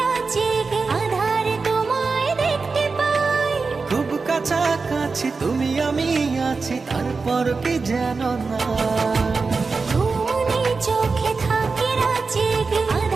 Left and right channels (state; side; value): quieter; left; 4.4 dB